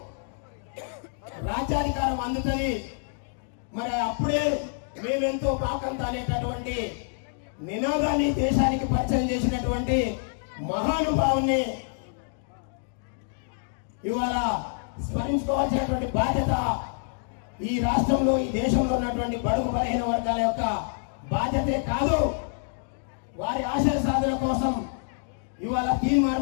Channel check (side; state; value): right; silent; digital silence